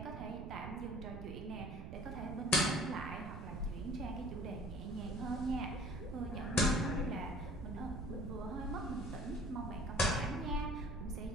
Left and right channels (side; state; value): right; noise; rumble, 8 dB below the sound